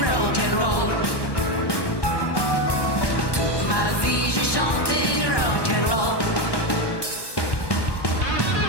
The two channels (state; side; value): late; right; 1.1 ms